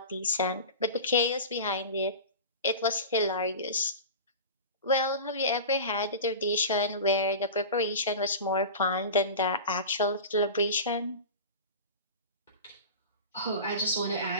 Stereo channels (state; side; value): inverted; both; correlation -0.31